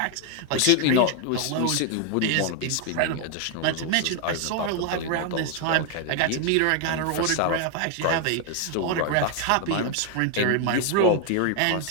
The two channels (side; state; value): both; different; correlation 0.00